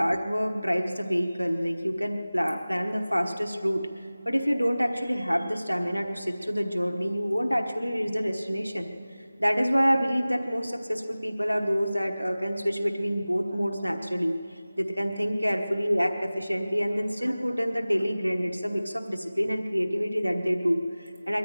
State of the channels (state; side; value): inverted; both; correlation -0.98